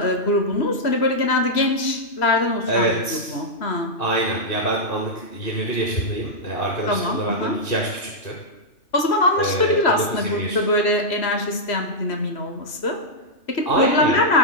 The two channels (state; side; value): late; right; 3.0 ms